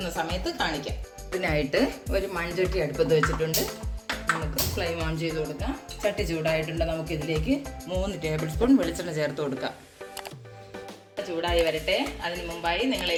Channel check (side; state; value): both; identical; correlation 1.00